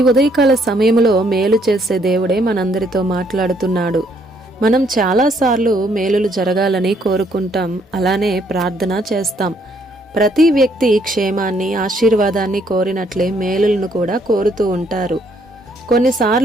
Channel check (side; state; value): both; normal; correlation 0.69